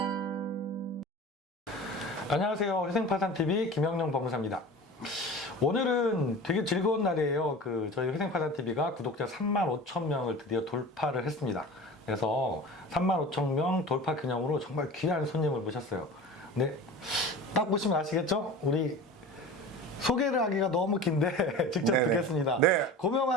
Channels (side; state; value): both; normal; correlation 0.35